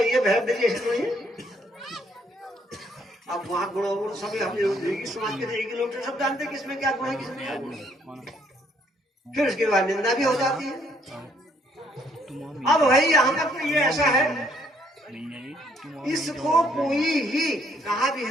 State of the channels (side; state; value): both; normal; correlation 0.67